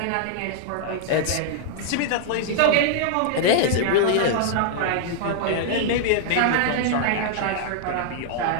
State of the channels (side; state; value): both; different; correlation -0.01